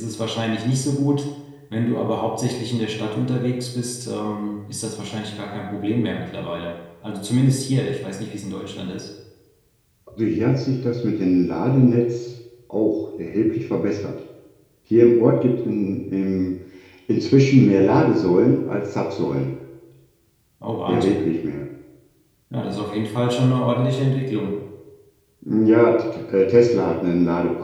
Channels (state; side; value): identical; both; correlation 1.00